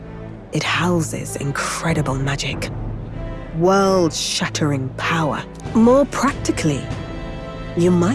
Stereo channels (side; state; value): both; identical; correlation 1.00